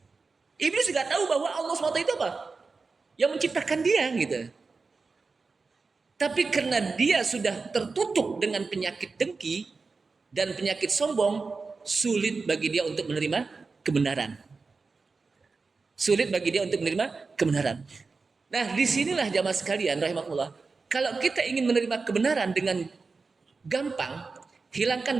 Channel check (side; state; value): left; quieter; 4.3 dB